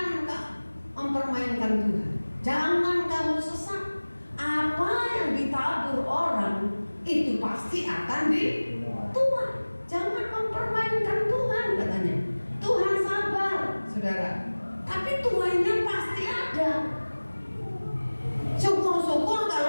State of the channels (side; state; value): both; inverted; correlation -1.00